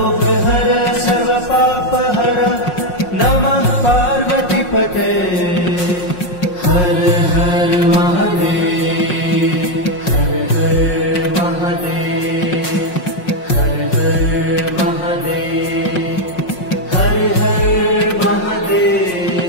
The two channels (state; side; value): late; right; 5.5 ms